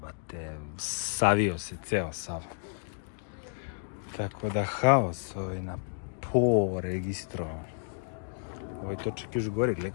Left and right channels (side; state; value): right; silent; digital silence